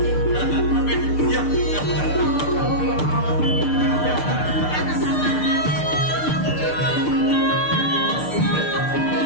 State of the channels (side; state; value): right; late; 6.7 ms